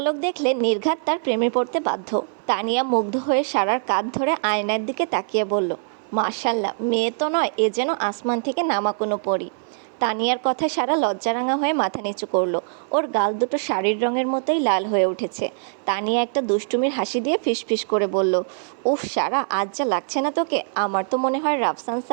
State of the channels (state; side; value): silent; left; 60 dB below the other